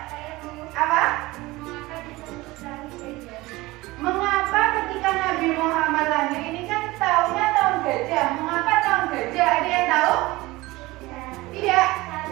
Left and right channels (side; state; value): left; quieter; 20.3 dB